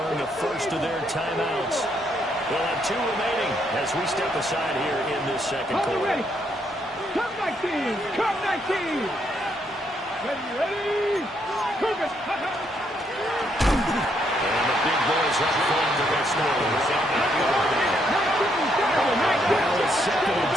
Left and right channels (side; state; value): both; normal; correlation 0.74